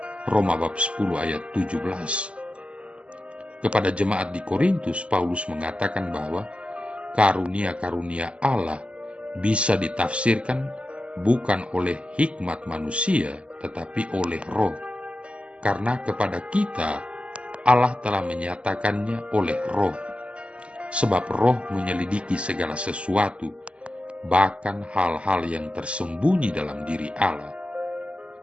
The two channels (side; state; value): left; late; 0.057 ms